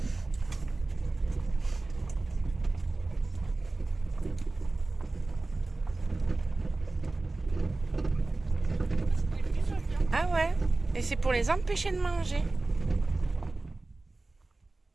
Ah ouais, et c'est pour les empêcher de manger.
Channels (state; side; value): quieter; left; 3.2 dB